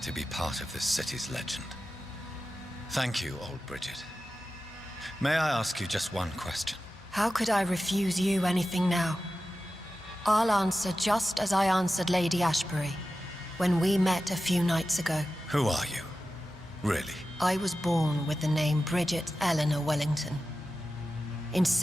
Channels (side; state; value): both; normal; correlation 0.93